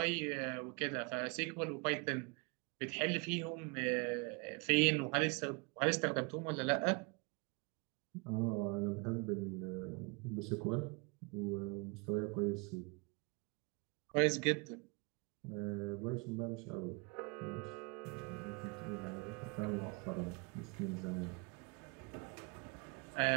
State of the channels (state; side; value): quieter; left; 30.9 dB